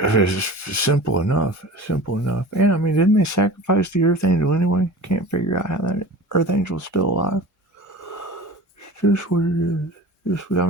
simple enough. Simple enough. And I mean, didn't they sacrifice the Earth Angel anyway? Can't figure out how that Earth Angel's still alive. It's just what it is. I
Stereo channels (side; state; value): both; normal; correlation 0.38